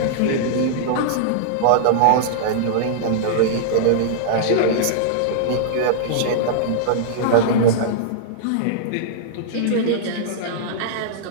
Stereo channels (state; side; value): different; both; correlation -0.02